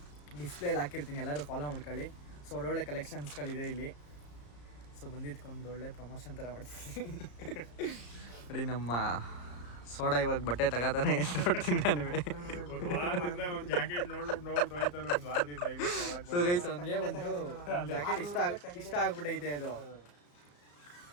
ಡಿಸ್ಪ್ಲೇಲಿ ಹಾಕಿರ್ತೀನಿ, ಎಲ್ಲರೂ ಫಾಲೋ ಮಾಡ್ಕೊಳ್ಳಿ. ಸೊ ಒಳ್ಳೊಳ್ಳೆ ಕಲೆಕ್ಷನ್ಸ್ಗಳಿದೆ ಇಲ್ಲಿ. ಸೊ ಬಂದಿದ್ಕೊಂಡು ಒಳ್ಳೆ ಪ್ರಮೋಷನ್ ಥರ ಮಾಡ್ತೀನಿ. ನೋಡಿ ನಮ್ಮ ಸೋಡಾ ಇವಾಗ ಬಟ್ಟೆ ತಗೋತಾನೆ. ನೋಡ್ತೀನಿ ನಾನು. ಸೊ ಗೈಸ್, ಅವನಿಗೆ ಒಂದು ಜಾಕೆಟ್ ಇಷ್ಟ ಆಗ್ಬಿಟ್ಟೈತೆ. ಅದು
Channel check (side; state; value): right; late; 34 ms